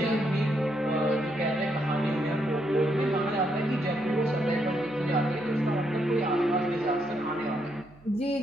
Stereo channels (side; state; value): right; noise; hum, 26 dB below the sound